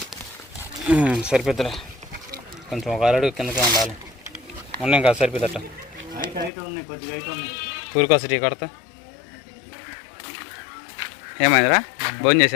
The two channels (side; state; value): right; drops out; at 6.5 s